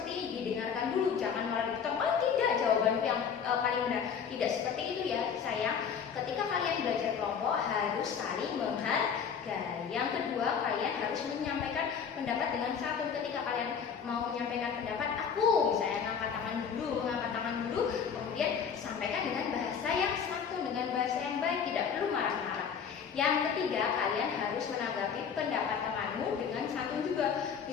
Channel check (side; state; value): right; quieter; 7.0 dB